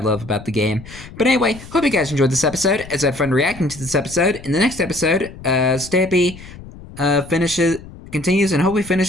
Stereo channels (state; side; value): noise; left; rumble, 17 dB below the sound